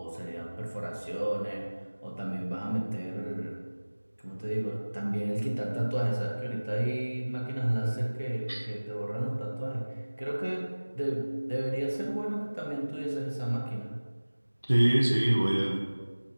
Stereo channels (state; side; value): inverted; both; correlation -1.00